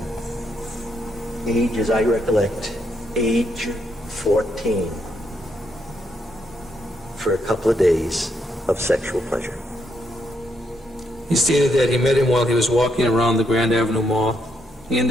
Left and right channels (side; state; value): both; normal; correlation 0.77